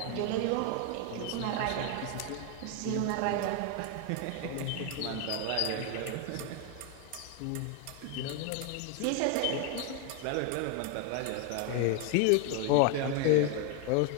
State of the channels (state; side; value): different; both; correlation 0.01